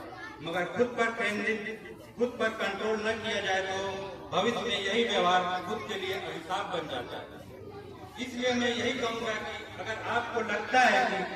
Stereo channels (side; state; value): both; identical; correlation 1.00